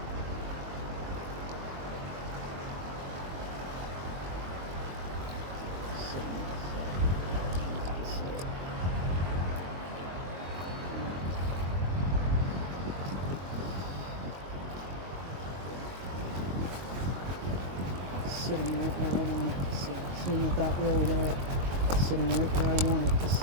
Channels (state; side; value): late; left; 22 ms